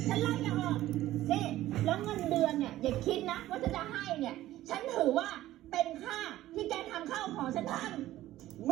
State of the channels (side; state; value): left; quieter; 14.8 dB